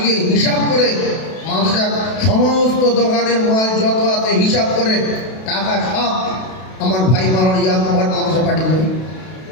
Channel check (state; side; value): late; right; 32 ms